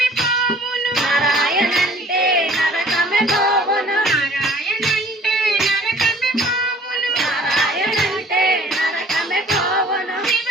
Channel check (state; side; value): normal; both; correlation 0.52